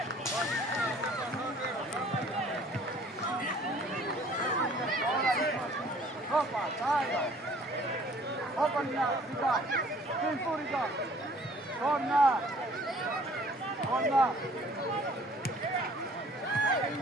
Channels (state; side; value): normal; both; correlation 0.54